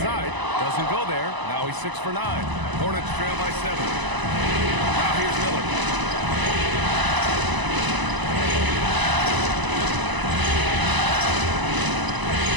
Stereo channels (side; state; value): left; late; 1.0 ms